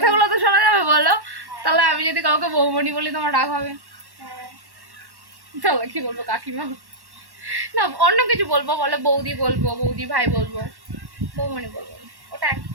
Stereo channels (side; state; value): left; late; 1.1 ms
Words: তো শোনা যাবে, বলো। তাহলে আমি যদি কাউকে বৌমণি বলি তোমার রাগ হবে? হ্যাঁ, তাহলে কি বলবো, কাকিমা? না, অন্য কিছু বলবো, বলে বৌদি বলবো, বৌদি ভাই বলবো, বৌমণি বলবো না। ওটা এক